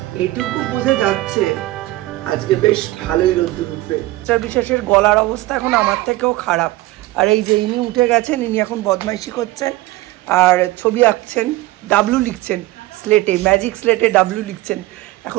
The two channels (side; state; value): left; quieter; 18.3 dB